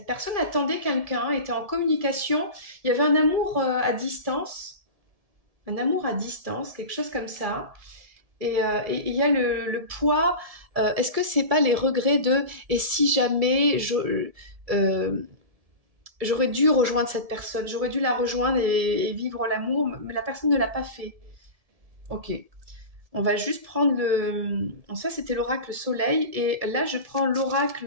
personne attendait quelqu'un, était en communication. Il y avait un amour à distance. Un amour à distance, quelque chose comme ça. Et il y a le poids. Est-ce que c'est pas les regrets de et si jamais j'aurais dû rejoindre cette personne, j'aurais dû la rejoindre et vivre l'amour, mais la personne ne l'a pas fait. Ok. On va juste prendre le... Ça, c'était l'oracle soleil. Et là, je prends l'oracle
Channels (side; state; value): left; late; 1.7 ms